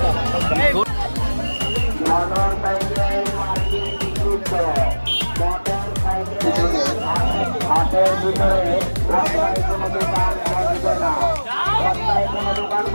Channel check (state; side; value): inverted; both; correlation -1.00